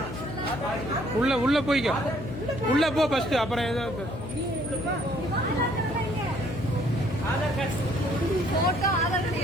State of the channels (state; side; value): noise; left; hum, 8 dB below the sound